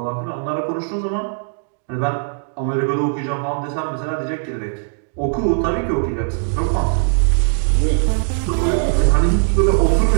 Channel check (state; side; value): silent; left; digital silence